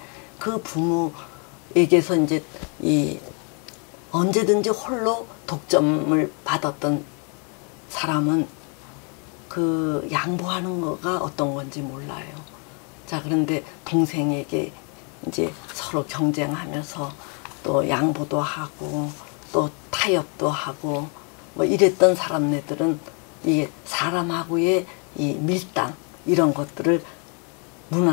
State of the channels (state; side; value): quieter; right; 36.6 dB